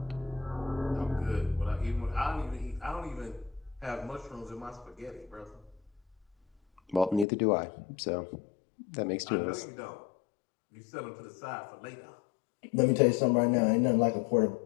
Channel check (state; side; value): drops out; right; at 7.2 s